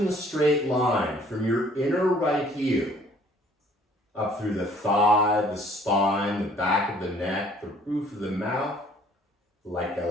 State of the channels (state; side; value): normal; both; correlation 0.57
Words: the straight line from your inner right heel up through the thigh, the spine, the back of the neck, the roof of the mouth, like a